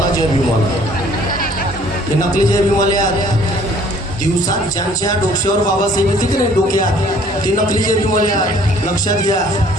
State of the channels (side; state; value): both; normal; correlation 0.57